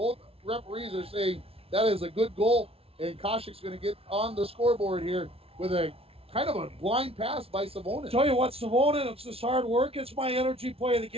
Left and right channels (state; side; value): late; left; 0.28 ms